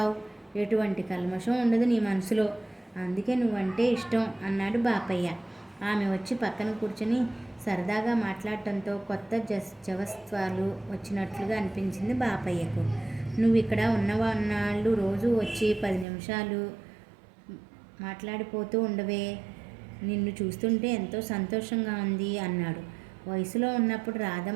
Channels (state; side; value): drops out; left; at 16.1 s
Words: ఎటువంటి కల్మషం ఉండదు నీ మనసులో. అందుకే నువ్వంటే ఇష్టం అన్నాడు బాపయ్య. ఆమె వచ్చి పక్కన కూర్చొని సరదాగా మాట్లాడటంతో కొత్త జవత్వాలు వచ్చినట్లుగా అనిపించింది బాపయ్యకు. నువ్వు ఇక్కడ ఉన్నవాళ్ళు రోజు వచ్చి 10 నిమిషాలు మాట్లాడిపోతూ ఉండవే, నిన్ను చూస్తుంటే ఎంతో సంతోషంగా ఉంది అన్నాడు. వయసులో ఉన్నప్పుడు